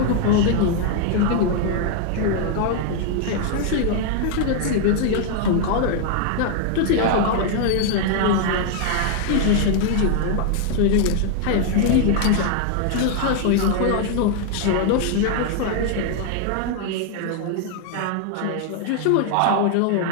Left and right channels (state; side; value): different; both; correlation 0.00